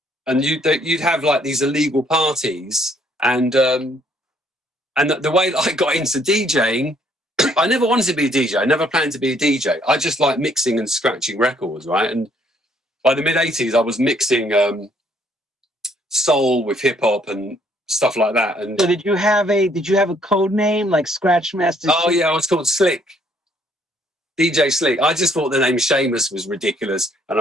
you'd have like these illegal parties. And the way that I got into DJing, I never wanted to be a DJ. I never planned to be a DJ. I just like mixing and scratching records, right? And by the mid-80s, I was mixing soul with hip-hop and stuff like that. And so did you have a code name like Scratch Master? Oh, yeah, I was called Slick. DJ Slick. I just thought the name Seamus was ridiculous, and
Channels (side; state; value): both; normal; correlation 0.66